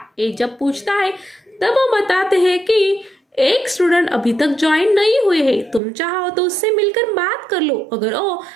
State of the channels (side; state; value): left; drops out; at 5.8 s